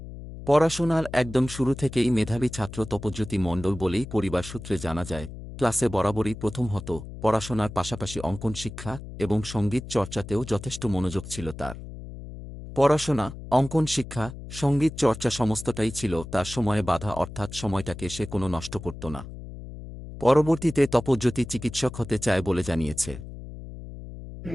পড়াশোনার একদম শুরু থেকেই মেধাবী ছাত্র তপজ্যোতি মণ্ডল বলেই পরিবার সূত্রে জানা যায়। ক্লাসে বরাবরই প্রথম হতো, পড়াশোনার পাশাপাশি অঙ্কন শিক্ষা এবং সঙ্গীত চর্চাতেও যথেষ্ট মনোযোগ ছিল তার। পড়াশোনা, অঙ্কন শিক্ষা, সঙ্গীত চর্চা সমস্তটাই ছিল তার সময়ে বাধা, অর্থাৎ সময়টাকে সে কোনো নষ্ট করত না। পরবর্তীতে তপজ্যোতি চিকিৎসক হতে চায় বলে জানিয়েছে।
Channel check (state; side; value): noise; left; hum, 12 dB below the sound